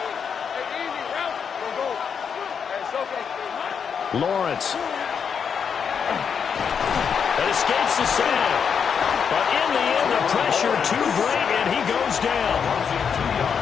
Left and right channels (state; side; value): quieter; right; 6.8 dB